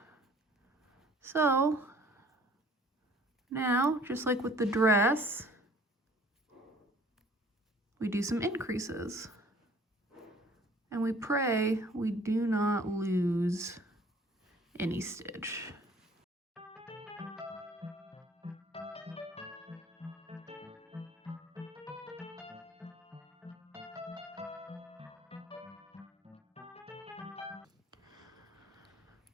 So now, just like with the dress, we do some increases. And we pray we do not lose any stitch.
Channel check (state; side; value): normal; both; correlation 0.54